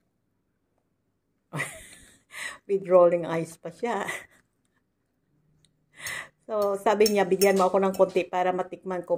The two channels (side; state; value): both; identical; correlation 1.00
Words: With rolling eyes pa siya. So, sabi niya, bigyan mo ako ng konti para matikman ko,